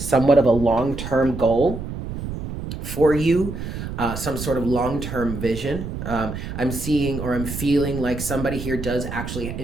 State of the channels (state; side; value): noise; right; rumble, 7 dB below the sound